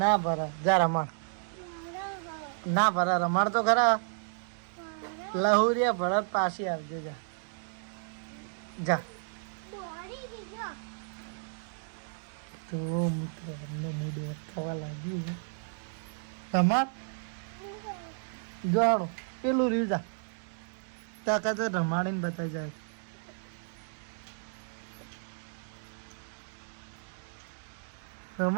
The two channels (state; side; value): silent; left; digital silence